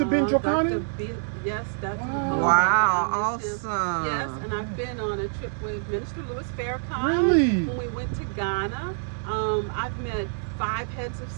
bin Dr. Jokane? Yes, that's Wow, I miss him. awesome. Yes, and I've been on a trip with Minister Louis Farrakhan. Really? When we went to Ghana. I've met 5 heads of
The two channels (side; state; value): left; silent; digital silence